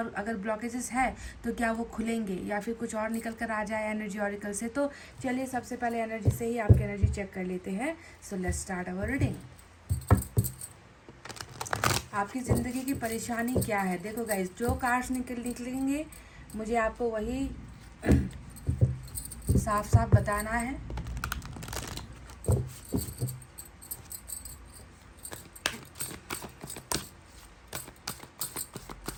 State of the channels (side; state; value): both; identical; correlation 1.00